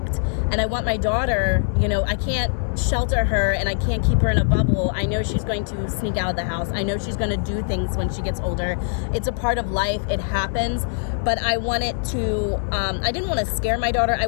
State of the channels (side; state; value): right; silent; digital silence